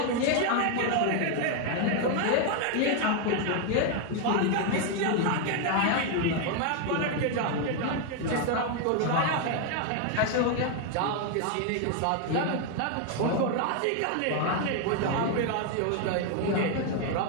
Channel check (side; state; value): both; different; correlation 0.01